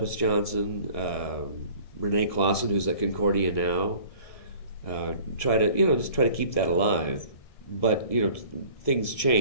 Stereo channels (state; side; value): late; right; 1.7 ms